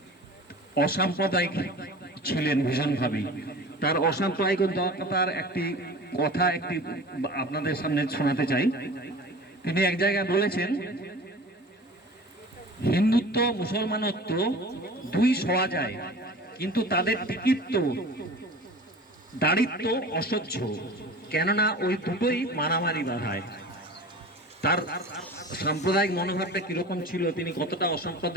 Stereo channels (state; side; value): normal; both; correlation 0.38